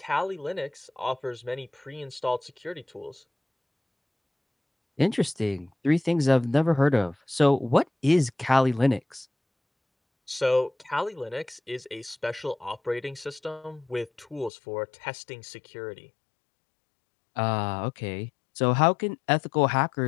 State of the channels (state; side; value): drops out; right; at 14.5 s